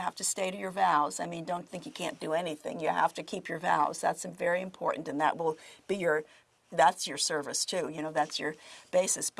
to stay to your vows. I mean, don't think you can't do anything. You have to keep your vows. That's very important, and that will be that's your service too. That's your basis.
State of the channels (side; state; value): both; identical; correlation 1.00